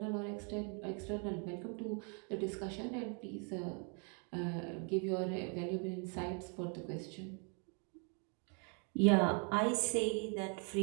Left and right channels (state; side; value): quieter; left; 38.6 dB